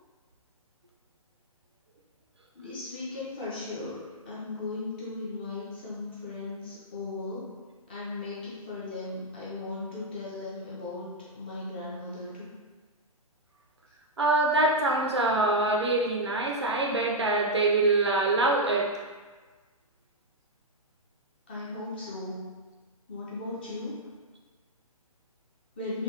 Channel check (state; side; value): normal; both; correlation -0.02